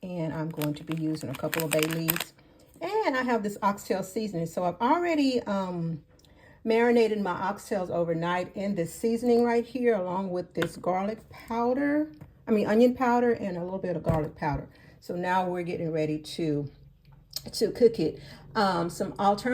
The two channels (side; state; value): both; identical; correlation 1.00